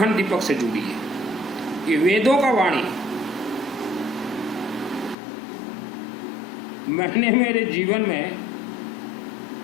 दीपक से जुड़िए। ये वेदों का वाणी। मैंने मेरे जीवन में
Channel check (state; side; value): drops out; right; at 5.2 s